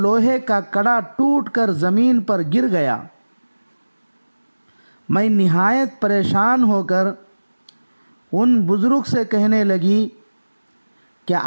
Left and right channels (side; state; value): both; inverted; correlation -1.00